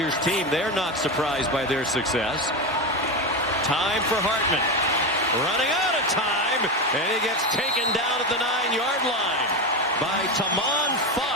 team. They're not surprised by their success. Time for Hartman. Running out of time, and he gets taken down at the 9-yard line by Tamon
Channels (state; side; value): normal; both; correlation 0.16